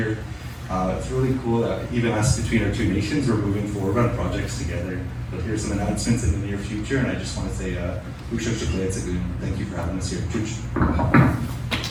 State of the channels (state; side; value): identical; both; correlation 1.00